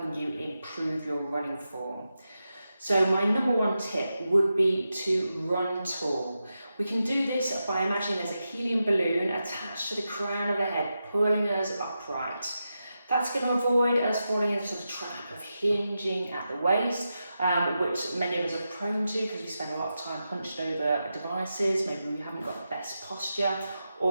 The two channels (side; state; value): both; inverted; correlation -0.89